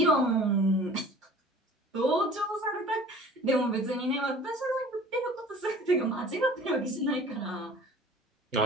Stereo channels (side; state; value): both; normal; correlation 0.46